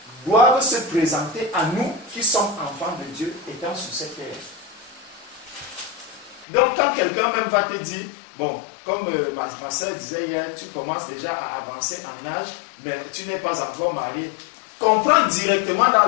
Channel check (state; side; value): drops out; right; at 6.5 s